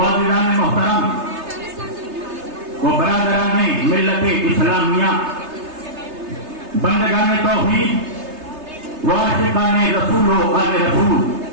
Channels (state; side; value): late; left; 3.3 ms